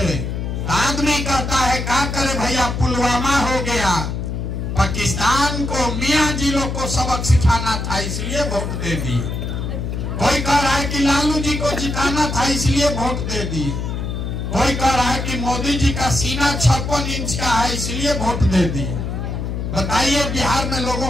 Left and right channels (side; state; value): left; noise; hum, 3 dB below the sound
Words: आदमी कहता है का करे भैया, पुलवामा हो गया, पाकिस्तान को मियाँ जिलों को सबक सिखाना था इसलिए वोट दे दिए। कोई कह रहा है कि लालू जी को जिताना था इसलिए वोट दे दिए। कोई कह रहा है कि मोदी जी का सीना 56 इंच का है इसलिए वोट दे दिए। बताइए बिहार में लोगों